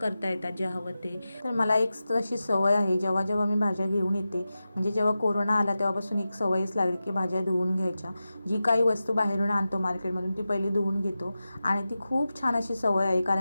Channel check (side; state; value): both; inverted; correlation -0.93